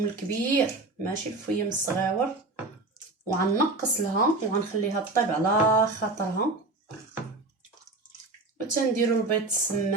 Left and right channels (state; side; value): quieter; left; 3.1 dB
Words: الكبير ماشي الفيم الصغيور، وغنقص لها وغنخليها طيب على خاطرها. وتنديرو البيض